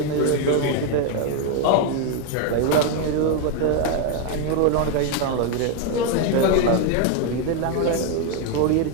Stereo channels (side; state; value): both; different; correlation 0.01